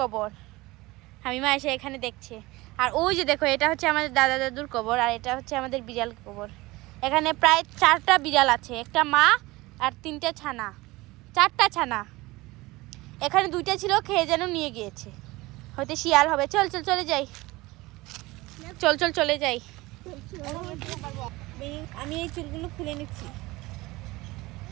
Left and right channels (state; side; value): quieter; left; 20.8 dB